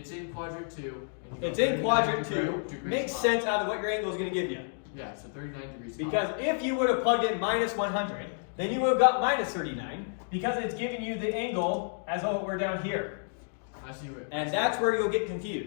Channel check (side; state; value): right; silent; digital silence